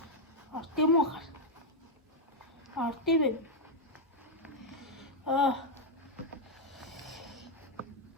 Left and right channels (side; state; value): both; normal; correlation -0.01